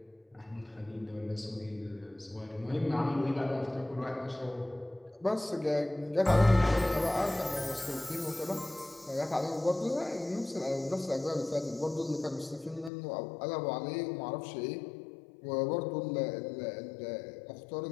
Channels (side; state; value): right; drops out; at 12.9 s